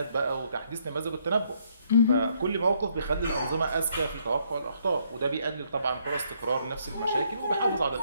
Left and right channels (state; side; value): inverted; both; correlation -0.70